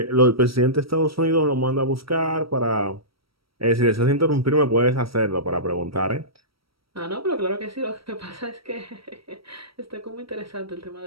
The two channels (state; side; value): late; left; 0.75 ms